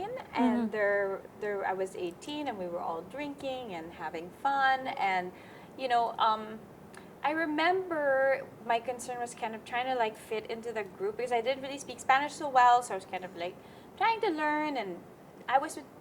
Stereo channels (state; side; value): identical; both; correlation 1.00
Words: and I was 18, and we were all drinking and having fun. And, you know, I remember my concern was kind of trying to like fit into the group, because I didn't really speak Spanish so well. So I was kind of like trying to learn, and I was with